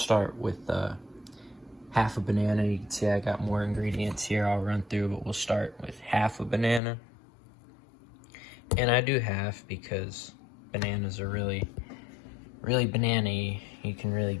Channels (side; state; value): right; drops out; at 6.8 s